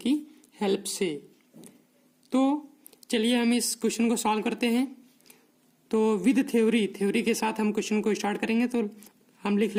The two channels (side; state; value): both; identical; correlation 1.00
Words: हेल्प से। तो चलिए हम इस क्वेश्चन को सॉल्व करते हैं। तो विद थ्योरी के साथ हम क्वेश्चन को स्टार्ट करेंगे। तो हम लिख